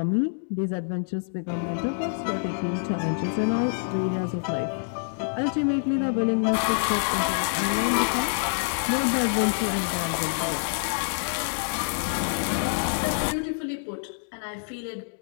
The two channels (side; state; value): right; silent; digital silence